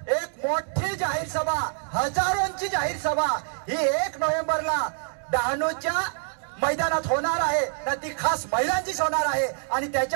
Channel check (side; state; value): left; silent; 61 dB below the other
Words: मोठी जाहीर सभा, हजारोंची जाहीर सभा ही 1 नोव्हेंबरला डहाणूच्या मैदानात होणार आहे ना, ती खास महिलांचीच होणार आहे आणि